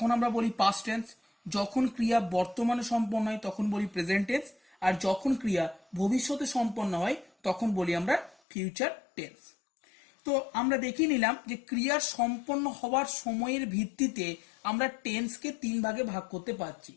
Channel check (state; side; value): drops out; right; at 8.3 s